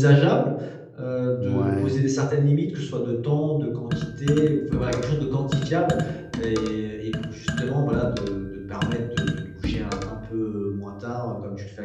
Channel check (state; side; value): identical; both; correlation 1.00